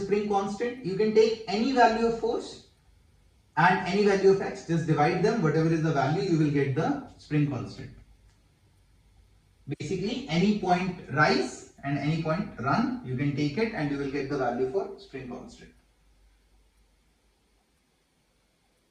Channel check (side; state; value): both; identical; correlation 1.00